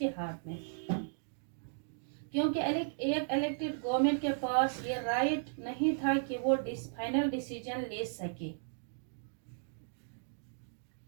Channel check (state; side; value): silent; left; digital silence